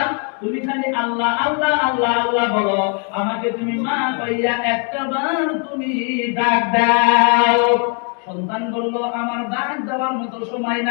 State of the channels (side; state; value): right; quieter; 39.3 dB